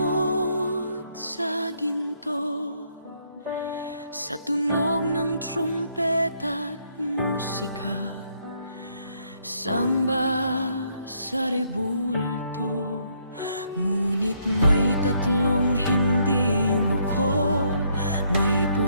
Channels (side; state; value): both; inverted; correlation -0.71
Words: sa ginto. Sa tunog ng trumpeta at musika, samba sa rebulto. Ngunit may tatlong hindi yumuko, may